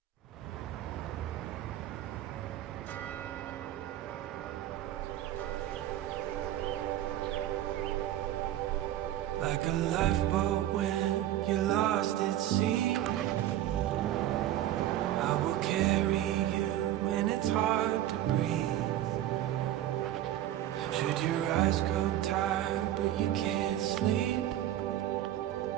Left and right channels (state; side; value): quieter; left; 12.8 dB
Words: Like a lifeboat when you're lost at sea, I will carry you when it's hard to breathe. Should your eyes grow tired but you can't sleep,